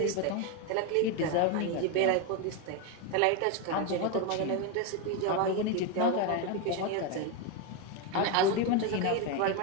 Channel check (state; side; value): different; both; correlation 0.02